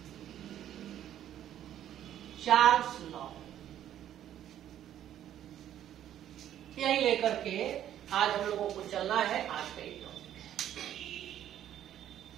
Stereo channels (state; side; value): quieter; left; 11.2 dB